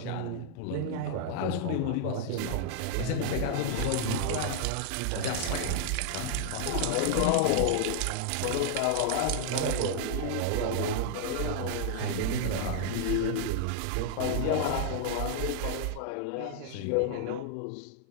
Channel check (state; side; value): different; both; correlation 0.00